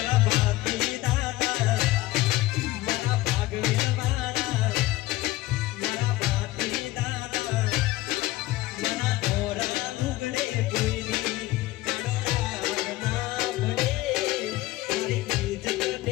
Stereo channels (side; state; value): right; quieter; 17.9 dB